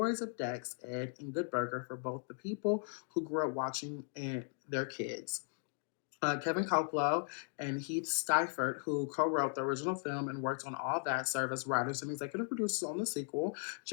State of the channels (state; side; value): silent; right; 53 dB below the other